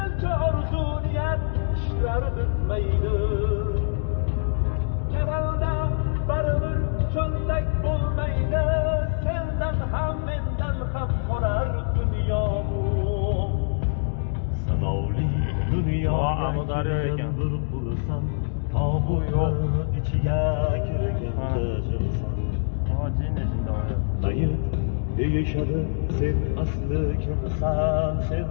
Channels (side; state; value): right; silent; digital silence